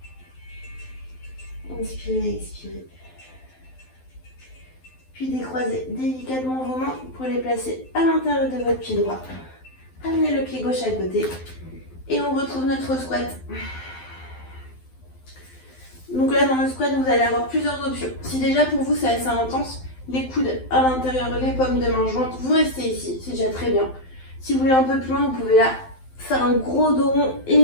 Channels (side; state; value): right; late; 12 ms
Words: Inspirez, expirez. Puis décroisez délicatement vos mains pour les placer à l'intérieur de votre pied droit. Amenez le pied gauche à côté et on retrouve notre squat. Donc là, dans le squat, vous allez avoir plusieurs options. Si déjà pour vous c'est assez intense, les coudes à l'intérieur, les paumes de main jointes, vous restez ici, c'est déjà très bien. Si vous voulez un peu plus loin, vous pouvez là faire un gros dos rond et